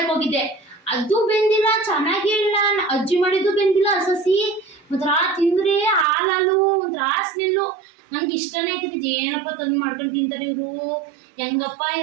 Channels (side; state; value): left; drops out; at 6.1 s